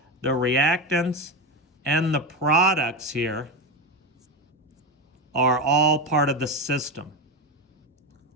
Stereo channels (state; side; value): normal; both; correlation 0.17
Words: the reactants and the products here are all part of the system.